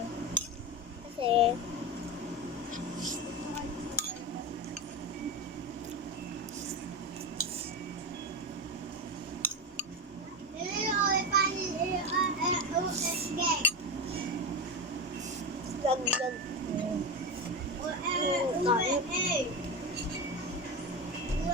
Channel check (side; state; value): both; normal; correlation 0.19